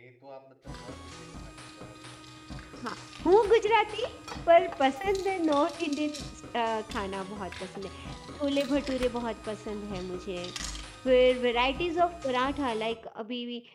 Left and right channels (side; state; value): both; identical; correlation 1.00